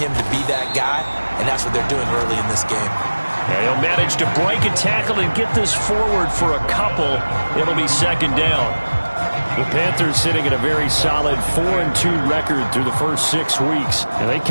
to be that guy, and that's what they're doing early in this game. And he'll manage to break a tackle and get this forward for a couple. It'll be second down. The Panthers sitting at a very solid 4-2 record through the first 6 weeks. And they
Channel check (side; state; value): both; inverted; correlation -1.00